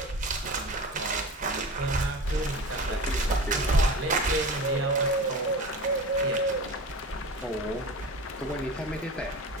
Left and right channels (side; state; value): both; normal; correlation 0.32